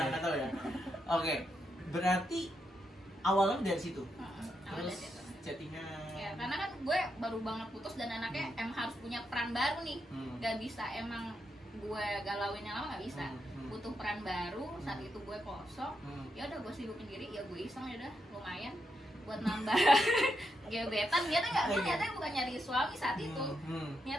nggak tahu ya. Oke. Berarti awalnya dari situ. Awalnya Terus dari situ. chattingan. Ya, karena kan gue baru banget putus dan anaknya emang harus punya peran baru nih. Gak bisa emang gue galauinnya lama, gak bisa. Butuh peran baru, saat itu gue kosong. Ya udah gue sibukin diri, ya gue iseng, ya udah lumayan buat nambah gebetan. Ternyata bukan nyari suami saat itu.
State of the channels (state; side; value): normal; both; correlation 0.83